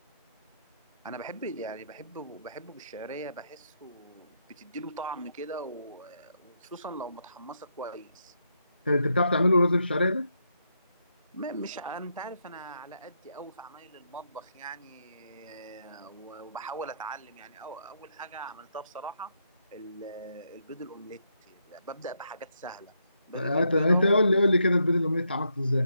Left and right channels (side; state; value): both; inverted; correlation -0.79